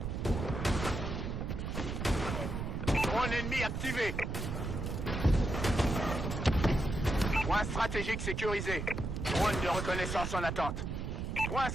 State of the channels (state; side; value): noise; right; rumble, 3 dB below the sound